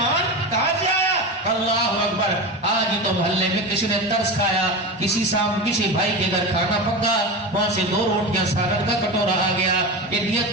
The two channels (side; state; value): both; normal; correlation 0.24